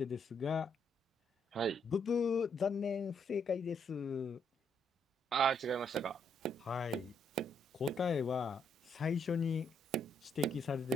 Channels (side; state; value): both; normal; correlation 0.74